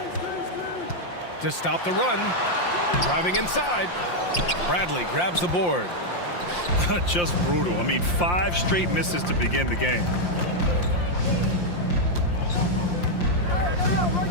To stop the run. Driving inside. Bradley grabs the board. Just brutal. I mean, 5 straight misses to begin the game.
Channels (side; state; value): right; late; 5.7 ms